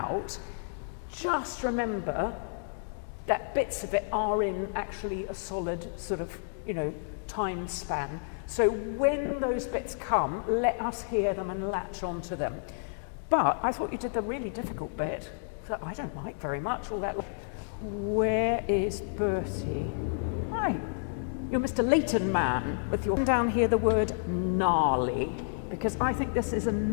just remember that bits of it are in actually a solid sort of, you know, time span. So when those bits come, let us hear them and latch onto them. But I thought you did the really difficult bit that I don't like very much, all that. Where is Bertie? Hi, you're Mr. Leighton man with your down here the word gnarly, because I think this is a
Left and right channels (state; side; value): silent; right; digital silence